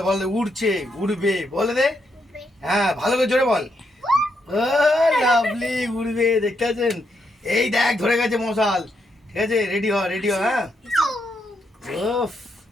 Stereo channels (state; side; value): normal; both; correlation 0.79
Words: বল, উড়ছে, উড়বে, বলে দে। হ্যাঁ, ভালো করে জোরে বল। ও লাভলি, উড়বে, দেখতে পাচ্ছেন? এই দেখ, ধরে গেছে মশাল। ঠিক আছে, রেডি হ, রেডি হ। হ্যাঁ, ওফ,